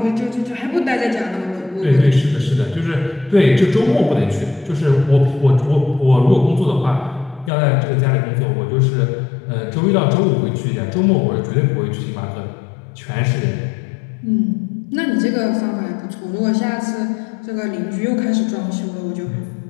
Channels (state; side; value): drops out; right; at 7.5 s